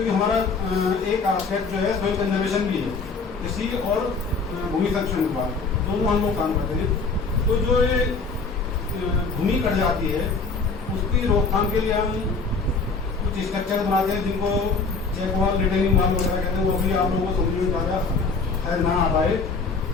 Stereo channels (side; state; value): right; quieter; 4.4 dB